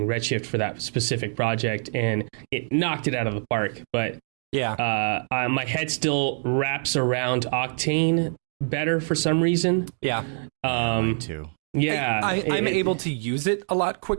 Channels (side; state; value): left; silent; digital silence